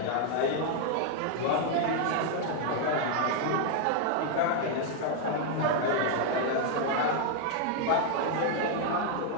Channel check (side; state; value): both; different; correlation 0.00